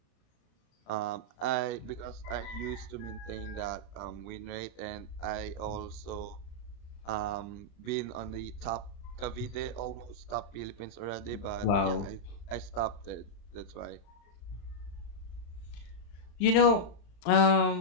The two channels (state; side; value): late; right; 35 ms